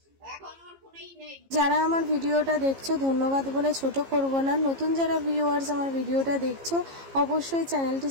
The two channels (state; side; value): late; left; 15 ms